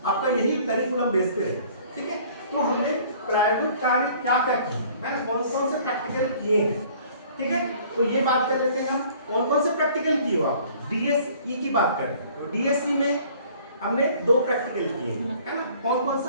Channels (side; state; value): both; inverted; correlation -0.53